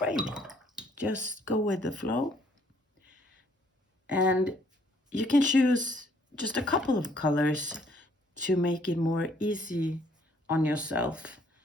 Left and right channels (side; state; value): both; normal; correlation 0.63